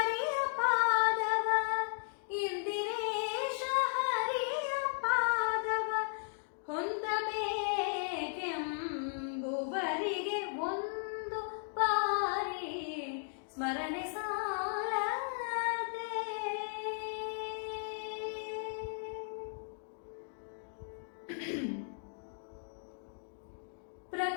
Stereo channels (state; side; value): silent; right; digital silence